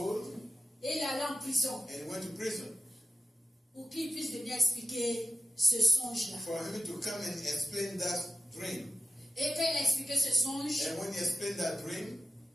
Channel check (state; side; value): normal; both; correlation 0.94